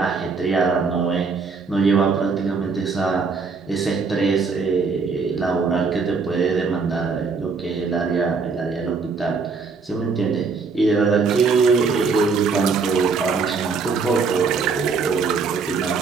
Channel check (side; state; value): left; quieter; 4.8 dB